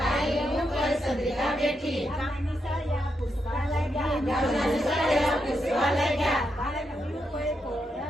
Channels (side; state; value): both; normal; correlation 0.83